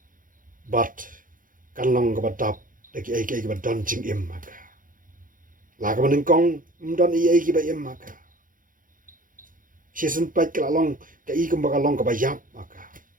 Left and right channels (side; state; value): left; late; 0.40 ms